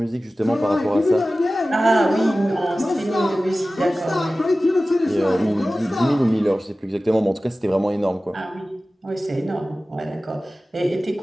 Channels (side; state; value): both; normal; correlation 0.96